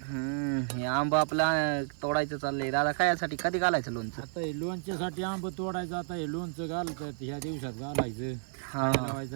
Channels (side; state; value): left; silent; 57 dB below the other